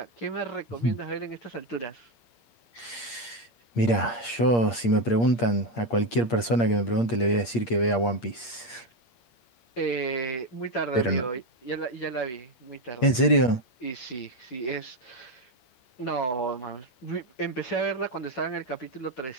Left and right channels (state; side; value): late; right; 8.6 ms